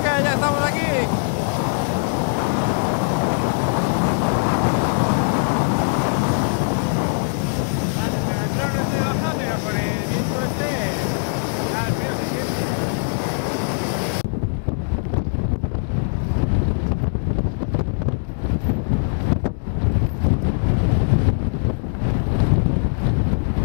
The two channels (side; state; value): right; silent; digital silence